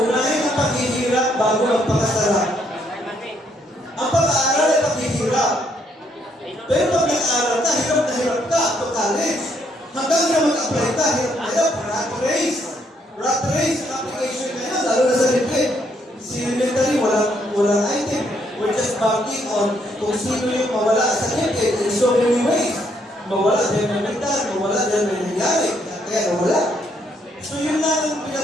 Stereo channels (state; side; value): normal; both; correlation 0.72